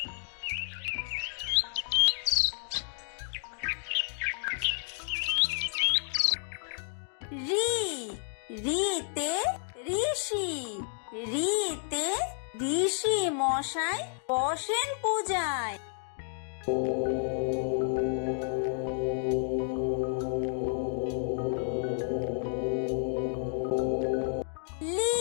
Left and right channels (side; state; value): right; silent; digital silence